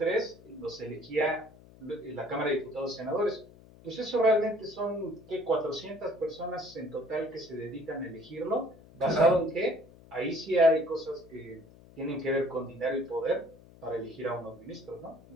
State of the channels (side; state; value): left; noise; hum, 23 dB below the sound